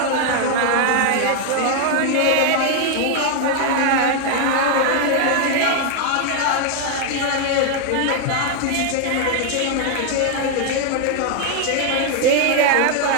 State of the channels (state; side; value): different; both; correlation 0.00